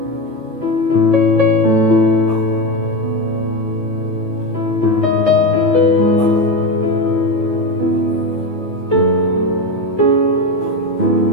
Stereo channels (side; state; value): right; late; 15 ms